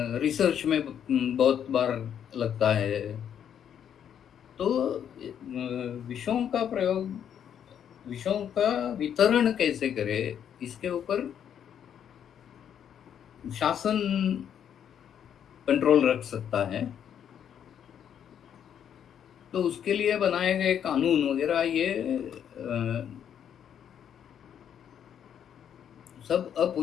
रिसर्च में बहुत बार लगता है। तो विषयों का वितरण कैसे करें, इसके ऊपर शासन कंट्रोल रख सकता है। तो उसके लिए बनाए गए कानून वगैरह ये सब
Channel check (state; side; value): quieter; right; 9.0 dB